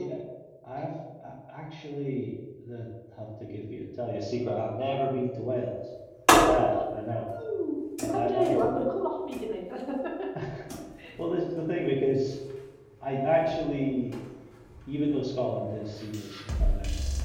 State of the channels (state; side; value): identical; both; correlation 1.00